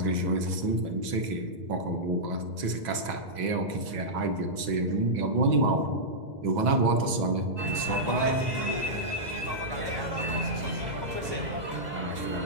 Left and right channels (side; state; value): left; late; 2.0 ms